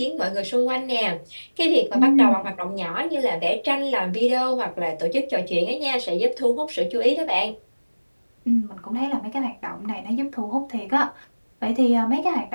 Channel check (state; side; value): inverted; both; correlation -1.00